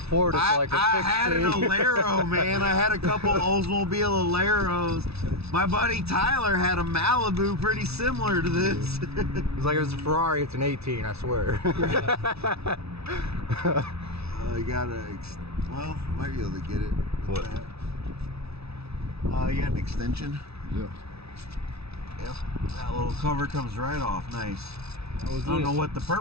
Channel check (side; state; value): left; late; 0.79 ms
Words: Ford, it's like a fixed I had an Alero, man. I had a couple Oldsmobile Aleros. My buddy Tyler had a Malibu pretty similar to this. It's like, if it's a Ferrari, it's an 18, I swear. You gotta, well, might be able to get it. What? You got an extension? Yeah. Yep. That little cover comes right off. Nice. I don't know what the